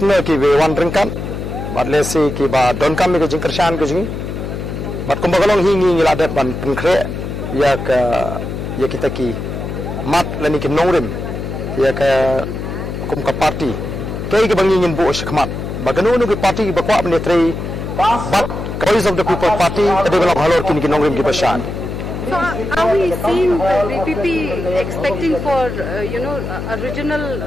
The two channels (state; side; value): noise; left; hum, 6 dB below the sound